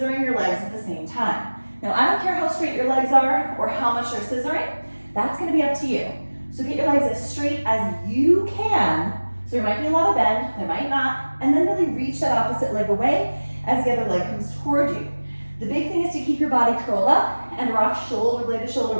your legs at the same time. Now, I don't care how straight your legs are or how much you're scissoring. That's going to be up to you. So get your legs as straight as you can. So there might be a lot of bend, there might not, and then really reach that opposite leg away as the other leg comes toward you. The big thing is to keep your body curled up and rock shoulder blade to shoulder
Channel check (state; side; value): inverted; both; correlation -1.00